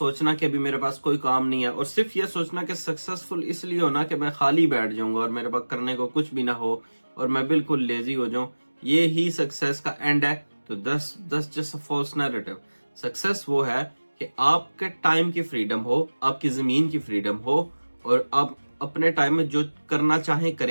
کہ ابھی میرے پاس کوئی کام نہیں ہے, اور صرف یہ سوچنا کہ سکسیسفل اس لیے ہونا کہ میں خالی بیٹھ جاؤں گا اور میرے پاس کرنے کو کچھ بھی نہ ہو اور میں بالکل لیزی ہو جاؤں, یہ ہی سکسیس کا اینڈ ہے. تو that's just a false narrative. Success وہ ہے کہ آپ کے ٹائم کی فریڈم ہو, آپ کی زمین کی فریڈم ہو, اور آپ اپنے ٹائم میں جو کرنا چاہیں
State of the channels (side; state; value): both; inverted; correlation -1.00